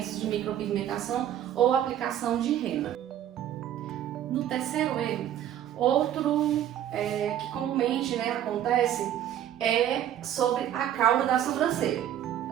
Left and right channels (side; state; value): left; quieter; 11.0 dB